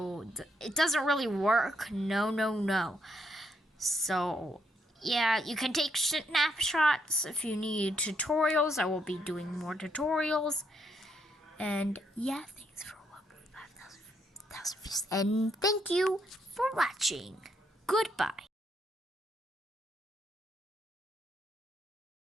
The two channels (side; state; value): both; normal; correlation 0.75